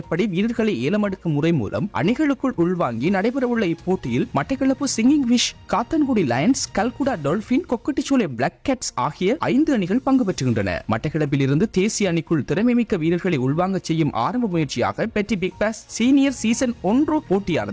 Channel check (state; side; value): identical; both; correlation 1.00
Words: வீரர்களை ஏலமெடுக்கும் முறை மூலம் அணிகளுக்குள் உள்வாங்கி நடைபெறவுள்ள இப்போட்டியில் Batticaloa singing fish, Kattankudy Lions, Kalkudah Dolphin, Kokkadicholai Black Cats ஆகிய 5 அணிகள் பங்கு பெற்றுகின்றன. மட்டக்களப்பில் இருந்து தேசிய அணிக்குள் திறமைமிக்க வீரர்களை உள்வாங்க செய்யும் ஆரம்ப முயற்சியாக பெட்டி பிக் பாஸ் சீனியர் சீசன் 1